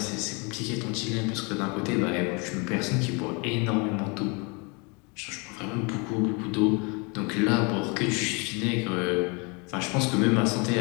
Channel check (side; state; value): right; quieter; 31.0 dB